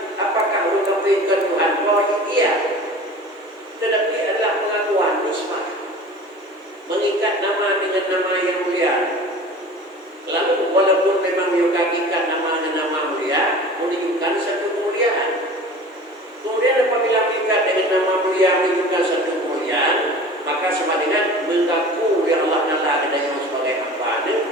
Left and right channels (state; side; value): normal; both; correlation 0.40